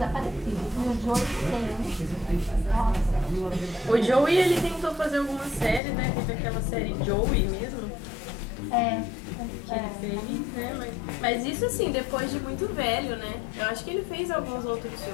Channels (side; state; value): right; drops out; at 5.8 s